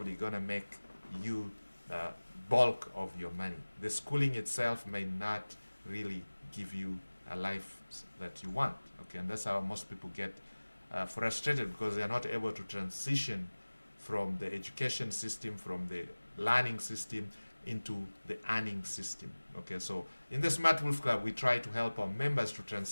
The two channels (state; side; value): inverted; both; correlation -1.00